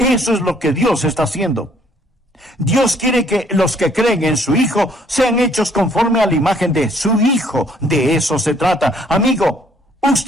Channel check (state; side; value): normal; both; correlation 0.63